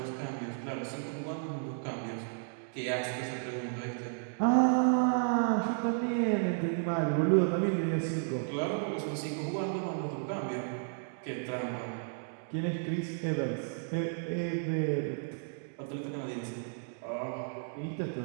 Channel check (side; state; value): left; silent; digital silence